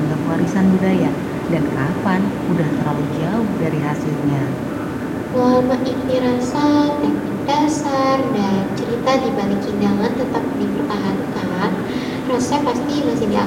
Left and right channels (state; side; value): identical; both; correlation 1.00